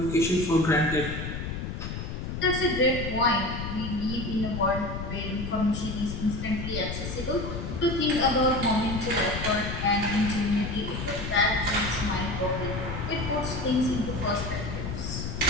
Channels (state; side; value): noise; left; rumble, 5 dB below the sound